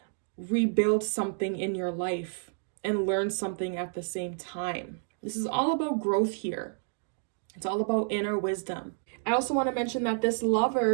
rebuild something in your life and learn something at the same time. This is all about growth here. It's all about inner wisdom. I also want to mention that this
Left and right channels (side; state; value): left; silent; digital silence